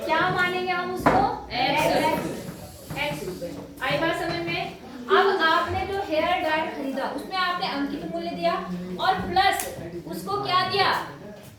क्या मानेंगे हम उसको? x रुपए। आई बात समझ में? अब आपने जो हेयर ड्रायर खरीदा उसमें आपने अंकित मूल्य दिया और प्लस उसको क्या दिया?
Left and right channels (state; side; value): identical; both; correlation 1.00